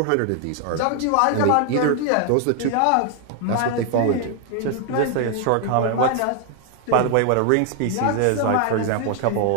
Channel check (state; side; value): different; both; correlation 0.00